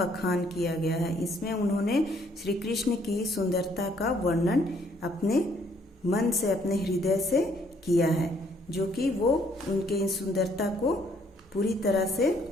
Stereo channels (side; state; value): both; normal; correlation 0.66